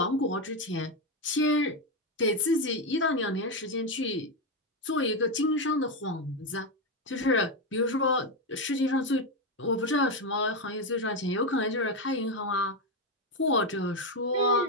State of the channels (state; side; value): normal; both; correlation 0.08